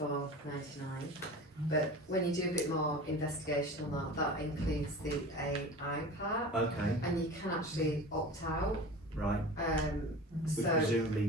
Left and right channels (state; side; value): normal; both; correlation 0.35